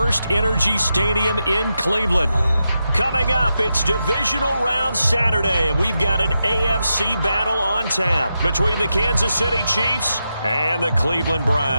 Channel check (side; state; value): both; inverted; correlation -0.87